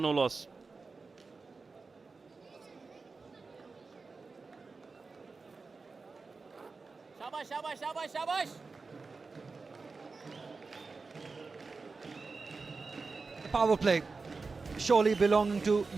loss. The power play surely belonging to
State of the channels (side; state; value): left; quieter; 4.2 dB